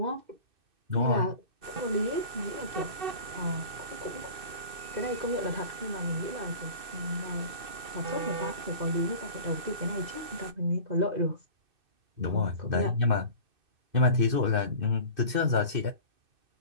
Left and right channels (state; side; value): late; left; 2.7 ms